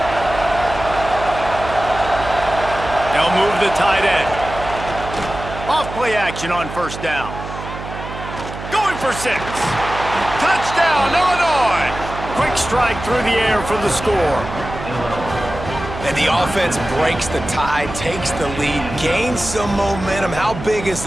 They'll move the tight end. Off play action on 1st down. Going for 6. Touchdown, Illinois. Quick strike through the air for the score. And the offense breaks the tie, takes the lead, gains some momentum. How big is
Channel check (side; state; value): right; noise; hum, 10 dB below the sound